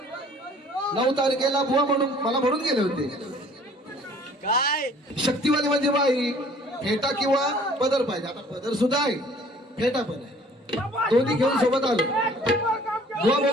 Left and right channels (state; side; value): normal; both; correlation 0.54